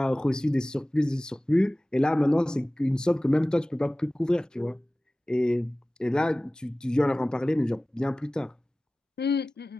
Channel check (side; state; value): both; normal; correlation 0.97